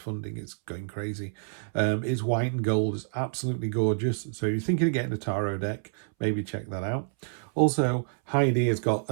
it's going crazy. It's white and gold, it's absolutely gorgeous. So if you're thinking of getting a tarot deck, maybe check that out. Also, Heidi has got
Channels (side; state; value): left; silent; 59 dB below the other